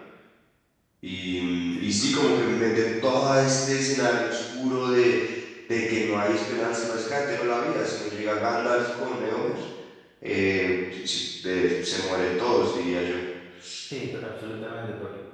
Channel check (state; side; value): identical; both; correlation 1.00